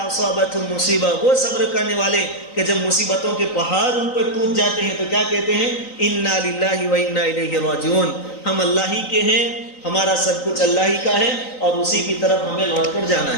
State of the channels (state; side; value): late; right; 3.9 ms